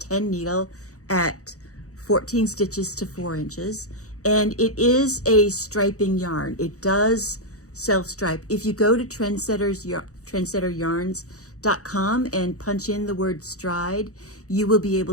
needle at 14 stitches to 4 inches. And it is a striping yarn. It does self-stripe. If you go to trendsetteryarns.com and punch in the word Stride, you will be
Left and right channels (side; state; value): right; late; 0.66 ms